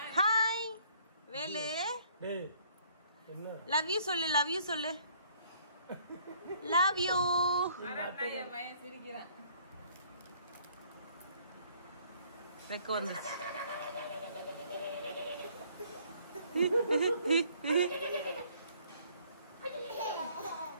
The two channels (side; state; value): both; inverted; correlation -0.62